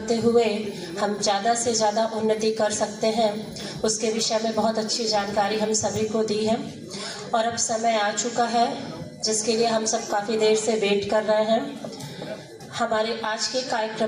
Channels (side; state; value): both; identical; correlation 1.00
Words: हुए हम ज़्यादा से ज़्यादा उन्नति कर सकते हैं, उसके विषय में बहुत अच्छी जानकारी हम सभी को दी है। और अब समय आ चुका है जिसके लिए हम सब काफ़ी देर से वेट कर रहे हैं। हमारे आज के